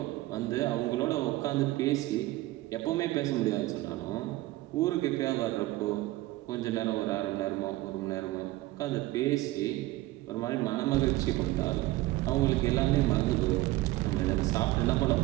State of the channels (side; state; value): left; quieter; 17.9 dB